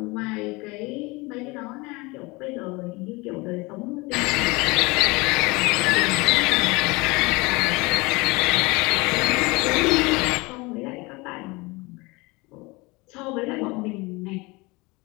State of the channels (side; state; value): right; quieter; 24.7 dB